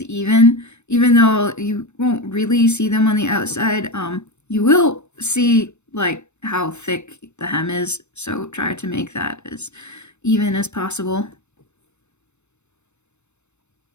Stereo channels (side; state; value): right; late; 0.82 ms